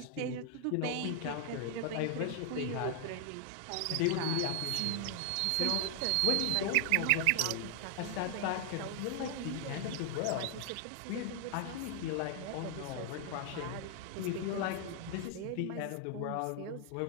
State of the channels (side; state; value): both; different; correlation 0.00